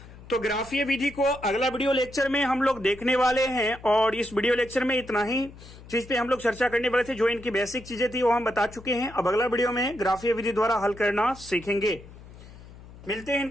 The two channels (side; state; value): left; noise; hum, 19 dB below the sound